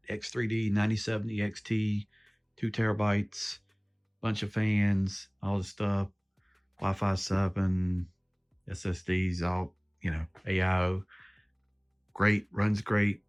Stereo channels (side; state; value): both; identical; correlation 1.00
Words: X3D, 9070 XT, 2 TB, bunch of fans, all the stuff, Wi-Fi 7, SSDs, all AIO. Great, runs great,